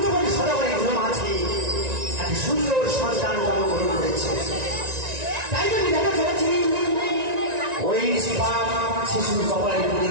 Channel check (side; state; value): left; late; 1.9 ms